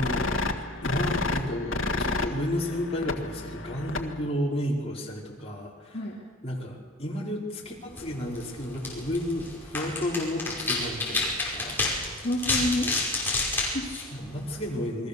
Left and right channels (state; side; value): normal; both; correlation 0.41